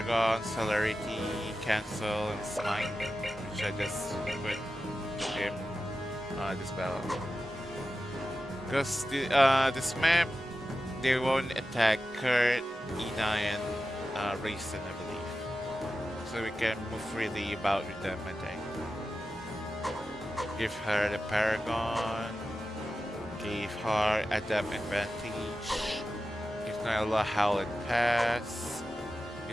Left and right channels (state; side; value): normal; both; correlation 0.92